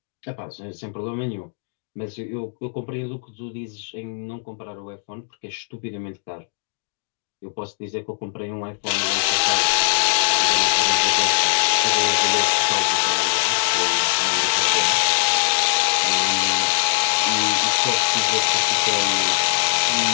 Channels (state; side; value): silent; right; digital silence